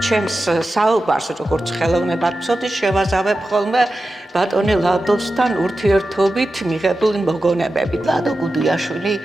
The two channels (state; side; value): normal; both; correlation 0.92